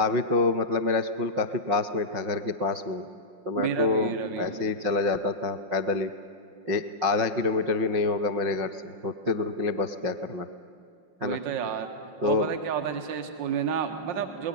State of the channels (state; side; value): late; left; 5.6 ms